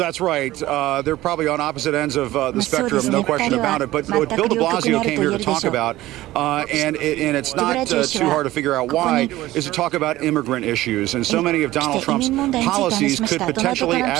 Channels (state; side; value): quieter; left; 16.5 dB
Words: right. They're probably on opposite ends of the spectrum, no question about it. But what Bill de Blasio came here to talk about, and it's not too hard to figure out why, is to talk about immigrant issues. And so many of Donald Trump's policies could potentially